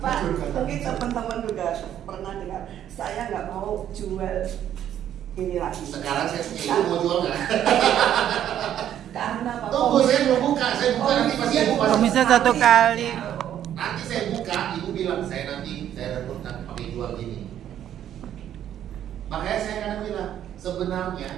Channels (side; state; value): left; quieter; 10.7 dB